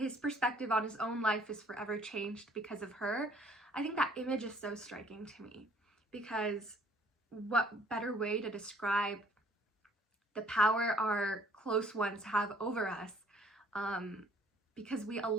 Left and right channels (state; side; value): normal; both; correlation 0.59